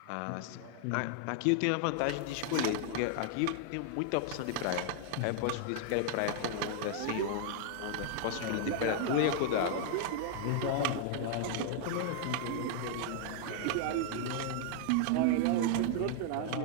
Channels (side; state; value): both; different; correlation 0.00